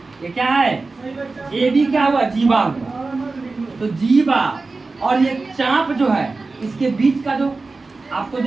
ये क्या है? ए बी क्या हुआ? जीवा हुआ। तो जीवा और ये चाप जो है इसके बीच का जो आपको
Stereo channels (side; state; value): left; quieter; 3.7 dB